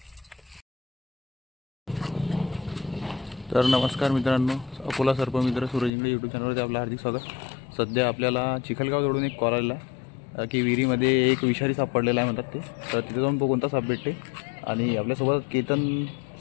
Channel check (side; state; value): right; drops out; at 5.9 s